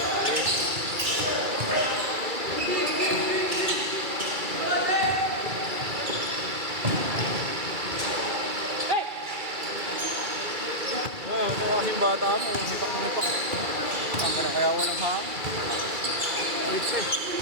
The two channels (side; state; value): left; late; 2.3 ms